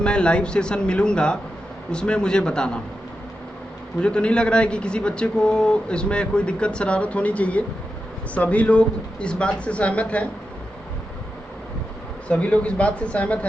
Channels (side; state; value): both; normal; correlation 0.89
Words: मैं लाइव सेशन मिलूँगा, उसमें मुझे बताना। मुझे तो नहीं लग रहा है कि किसी बच्चे को इसमें कोई दिक्कत शरारत होनी चाहिए। सभी लोग इस बात से सहमत हैं? सभी लोग इस बात से सहमत